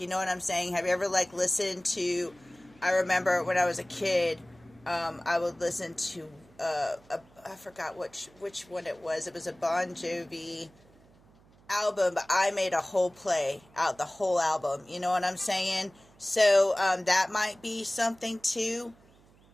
You know what I'm saying? Have you ever like listened to, I remember when I was a kid, I would listen to I forgot which one it was. It was a Bon Jovi album, but I made a whole play out the whole album. You know what I'm saying? So that might be something too.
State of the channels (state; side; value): noise; right; hum, 28 dB below the sound